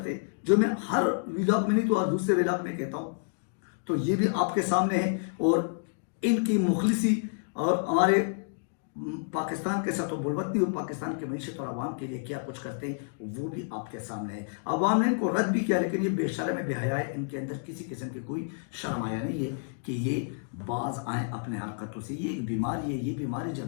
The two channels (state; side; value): silent; right; digital silence